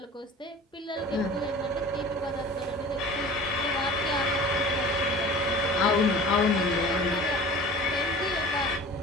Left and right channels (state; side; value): normal; both; correlation 0.41